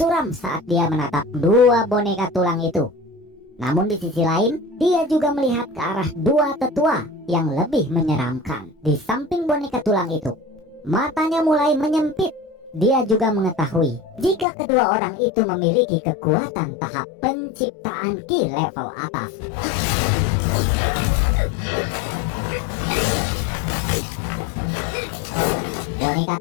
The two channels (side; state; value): right; drops out; at 14.5 s